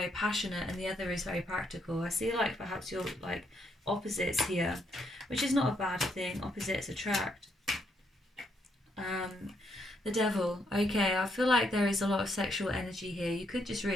passionate, and the other is very practical. I see like perhaps you're like opposites here, which is not a bad thing. Opposites attract. The Devil. Okay, I feel like there is a lot of sexual energy here. You could just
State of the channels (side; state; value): both; normal; correlation 0.75